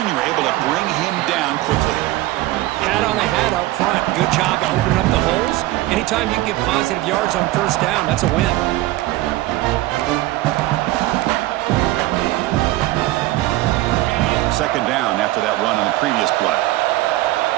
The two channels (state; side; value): quieter; left; 17.4 dB